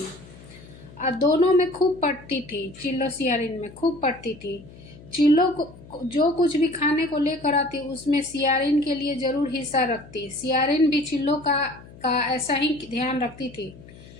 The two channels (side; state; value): left; noise; hum, 20 dB below the sound